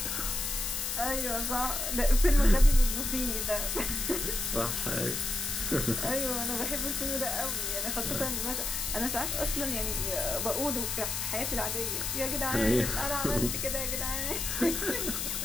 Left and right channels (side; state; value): left; noise; hiss, 2 dB below the sound